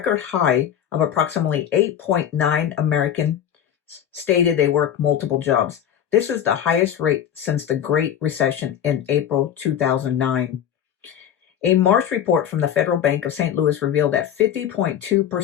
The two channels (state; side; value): quieter; right; 9.6 dB